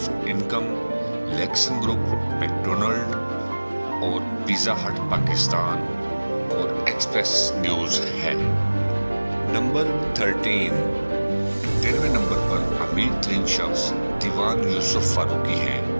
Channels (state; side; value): inverted; both; correlation -1.00